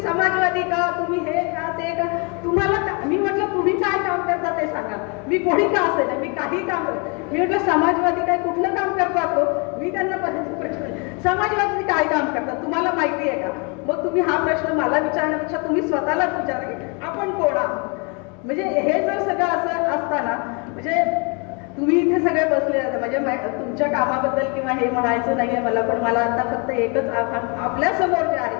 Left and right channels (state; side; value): quieter; right; 33.2 dB